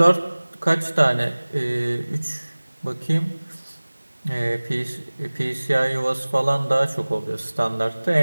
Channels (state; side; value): inverted; both; correlation -1.00